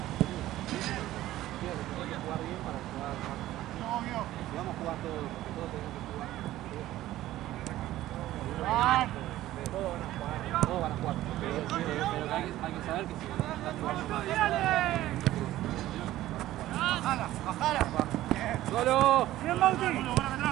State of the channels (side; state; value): left; quieter; 14.9 dB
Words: Vamos a jugar todos, porque todos tenemos que jugar. Todos van a jugar. Pero hay que saber que si estás jugando. Bajala. ¡Solo! Bien, Bauti.